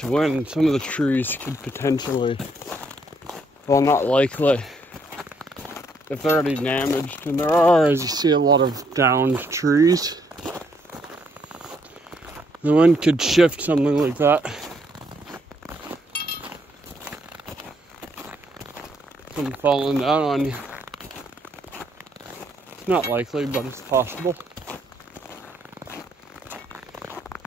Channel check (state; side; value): normal; both; correlation 0.71